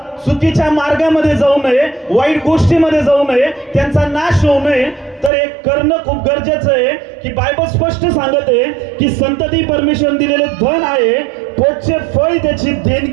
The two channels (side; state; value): left; drops out; at 5.3 s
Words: चुकीच्या मार्गामध्ये जाऊ नये, वाईट गोष्टीमध्ये जाऊ नये, त्यांचा नाश होऊ नये, तर एक करणं खूप गरजेचं आहे की बायबल स्पष्ट सांगत आहे की संतती परमेश्वर दिलेले धन आहे, पोटचे फळ त्याची